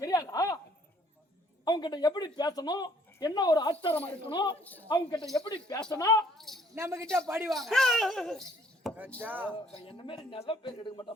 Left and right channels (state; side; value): normal; both; correlation 0.61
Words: தெரியாதா? அவங்க கிட்ட எப்படி பேசணும், என்ன ஒரு ஆச்சாரமா இருக்கணும், அவங்க கிட்ட எப்படி பேசணும், நம்ம கிட்ட படிவாங்க. என்ன மாதிரி நல்ல பேர் எடுக்க